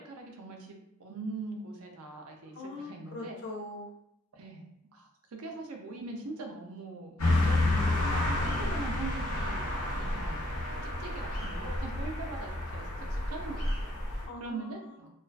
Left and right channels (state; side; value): normal; both; correlation 0.71